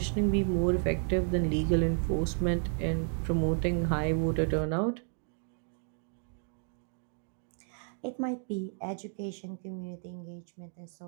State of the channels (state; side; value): silent; left; 56 dB below the other